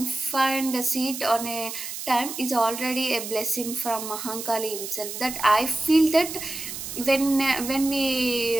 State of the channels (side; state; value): right; noise; hiss, 8 dB below the sound